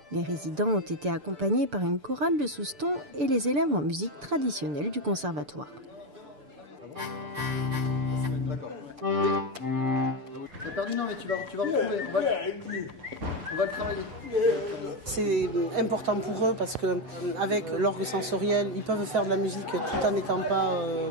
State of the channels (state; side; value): late; left; 6.8 ms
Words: Les résidents ont été accompagnés par une chorale de Souston et les élèves en musique traditionnelle du conservatoire. D'accord. T'as perdu, non, mais tu vas retrouver. On va le travailler. C'est important pour eux parce qu'avec l'orgue sensoriel, ils peuvent faire de la musique tout en n'étant pas